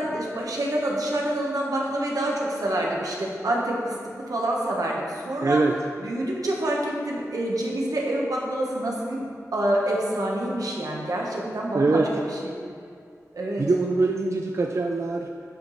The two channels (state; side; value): normal; both; correlation 0.84